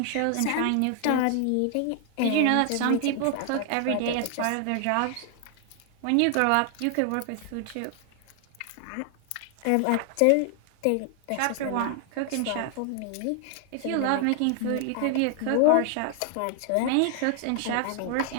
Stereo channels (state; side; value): different; both; correlation 0.00